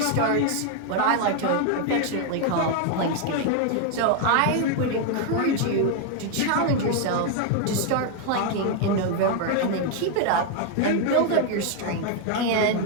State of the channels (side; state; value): both; different; correlation 0.00